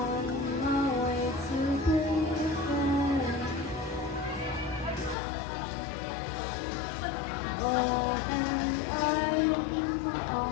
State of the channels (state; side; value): drops out; right; at 5.2 s